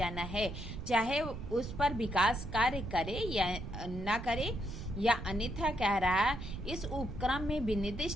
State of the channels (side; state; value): right; noise; rumble, 10 dB below the sound